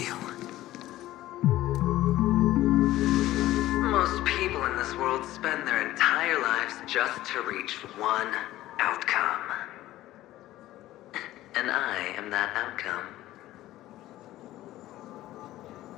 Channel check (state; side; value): quieter; right; 15.3 dB